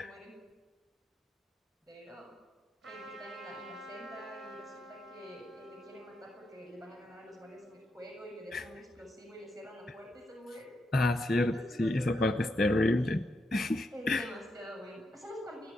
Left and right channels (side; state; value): both; normal; correlation 0.82